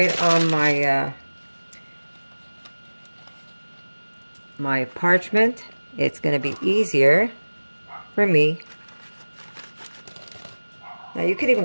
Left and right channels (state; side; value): inverted; both; correlation -1.00